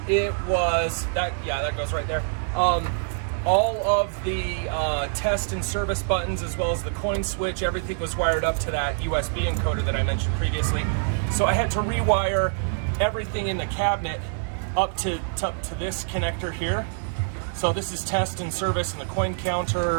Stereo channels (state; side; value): silent; left; 59 dB below the other